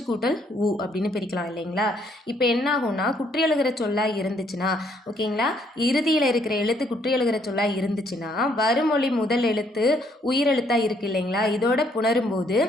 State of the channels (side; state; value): both; normal; correlation 0.68